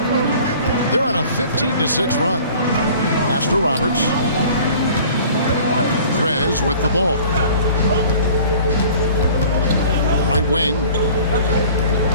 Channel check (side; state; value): both; inverted; correlation -0.47